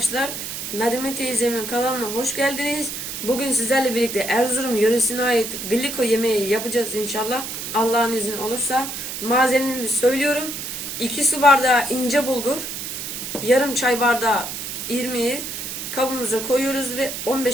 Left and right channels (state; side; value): noise; right; hiss, 6 dB below the sound